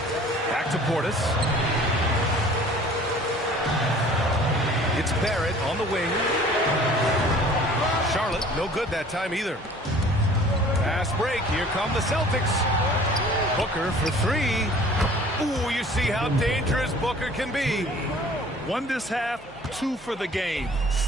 Back to Portis. It's Barrett on the wing. Charlotte, no good that time either. Fast break. Here come the Celtics. Booker for 3. Ooh, you see how dangerous Booker can be. 1 this half, 2 for the game.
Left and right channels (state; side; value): normal; both; correlation 0.50